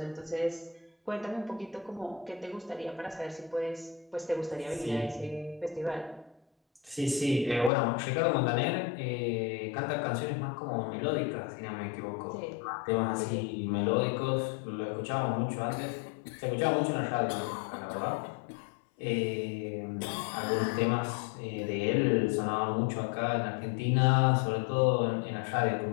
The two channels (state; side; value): drops out; right; at 7.7 s